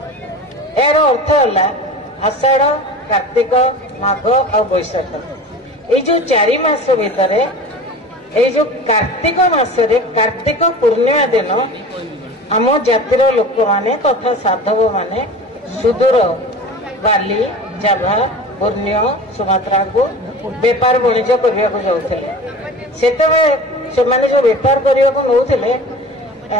ଏହାର ଅର୍ଥ ହେଲା ଆଷାଢ, କାର୍ତ୍ତିକ, ମାଘ ଆଉ ବୈଶାଖ, ଏଇ ଯୋଉ 4 ମାସ ଭିତରେ ଏଇ ଯୋଉ କାର୍ତ୍ତିକ ମାସରେ କାର୍ତ୍ତିକ ପୂର୍ଣ୍ଣିମା ଦିନ ଆମ ଜାତିର ଲୋକମାନେ ତଥା ସାଧବ ମାନେ ସୁଦୂର ବାଲି, ଜାଭା, ପୂର୍ଣ୍ଣିୟ, ସୁମାତ୍ରାକୁ ବେପାର ବାଣିଜ୍ୟ କରିବାକୁ ଯାଉଥିଲେ। ସେତେବେଳେ ସେମାନେ ଯୋଉ ବେପାର କରିବାକୁ ନଉଥିଲେ,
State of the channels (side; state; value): both; normal; correlation 0.35